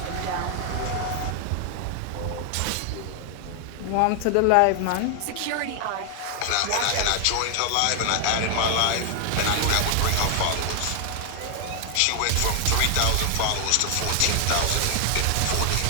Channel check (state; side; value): different; both; correlation 0.00